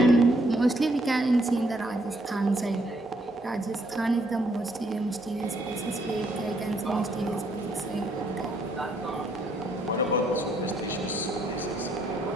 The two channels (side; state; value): both; normal; correlation 0.70